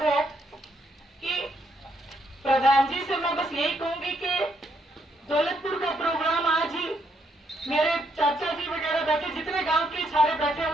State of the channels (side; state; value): both; normal; correlation 0.74